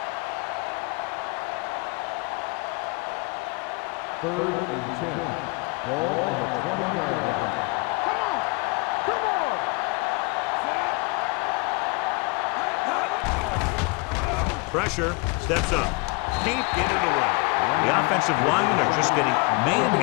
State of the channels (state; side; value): quieter; right; 28.9 dB